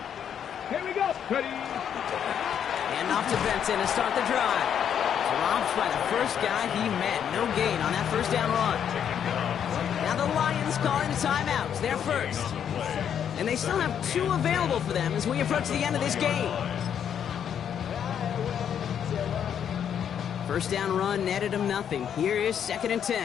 Here we go. Ready. And off to Benson to start the drive. Dropped by the first guy he met. No gain on that 1st down run. Now the Lions calling the timeouts. They're first. And they still have 2 available for them as we approach the end of this game. 1st down run netted him nothing. Here is 2nd and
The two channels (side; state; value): right; quieter; 8.7 dB